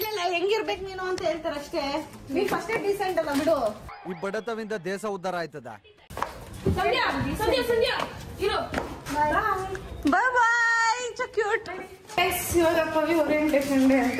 ಹೆಂಗಿರ್ಬೇಕು ನೀನು ಅಂತ ಹೇಳ್ತಾರೆ ಅಷ್ಟೇ. ನೀ ಫಸ್ಟ್ ಡೀಸೆಂಟ್ ಅಲ್ಲ ಬಿಡು. ಈ ಬಡತವಿಂದ ದೇಶ ಉದ್ಧಾರ ಆಯ್ತದ. Bye bye. So cute. ಇವಾಗ ಪವಿ ಓರಿಯೆಂಟೇಷನ್ ಡೇ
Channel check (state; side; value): identical; both; correlation 1.00